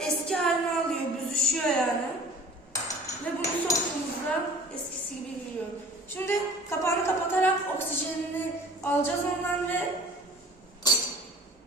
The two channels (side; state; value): both; normal; correlation 0.45